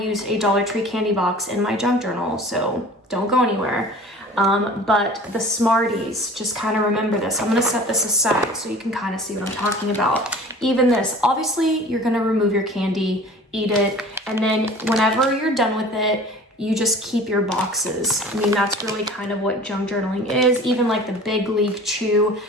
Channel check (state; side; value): normal; both; correlation 0.43